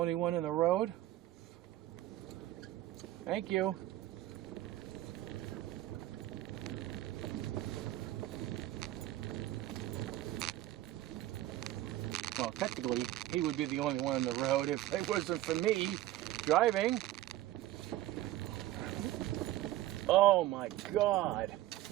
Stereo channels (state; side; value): quieter; left; 15.2 dB